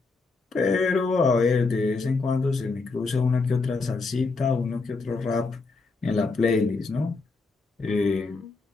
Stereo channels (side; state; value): right; quieter; 4.0 dB